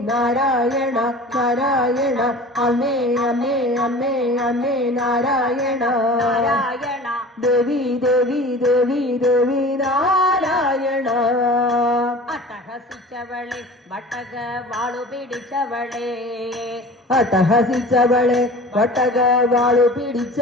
നാരായണ നാരായണ അമ്മേ അമ്മേ അമ്മേ അമ്മേ നാരായണ നാരായണ ദേവി ദേവി ദേവി ദേവി നാരായണ അട്ടഹസിച്ചവളെ വട്ടക വാളു പിടിച്ചവളെ അട്ടഹസിച്ചവളെ വട്ടക വാളു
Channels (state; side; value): normal; both; correlation 0.40